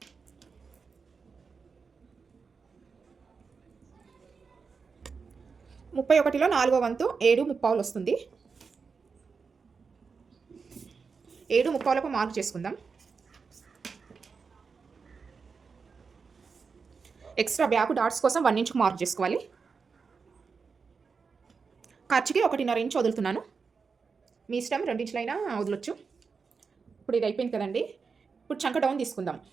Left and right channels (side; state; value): left; quieter; 5.2 dB